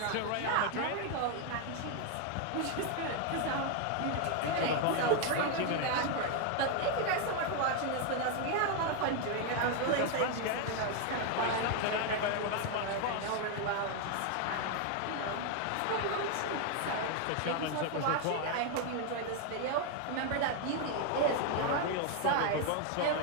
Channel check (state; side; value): different; both; correlation 0.01